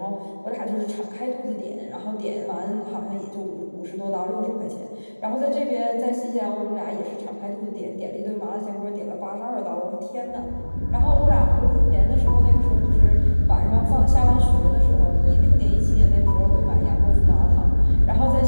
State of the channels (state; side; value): inverted; both; correlation -1.00